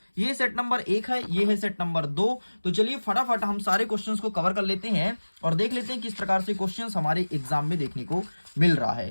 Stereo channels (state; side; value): inverted; both; correlation -1.00